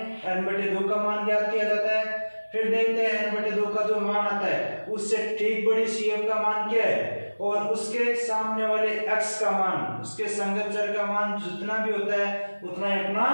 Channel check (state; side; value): inverted; both; correlation -1.00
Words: n/2 का मान ज्ञात किया जाता है। फिर देखते हैं n/2 का जो मान आता है उससे ठीक बड़ी CF का मान क्या है और उसके सामने वाले x का मान, उसके संगत चर का मान जितना भी होता है उतना ही अपना